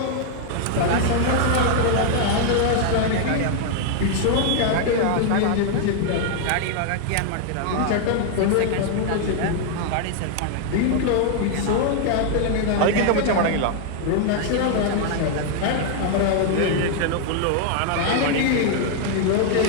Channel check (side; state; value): both; different; correlation 0.00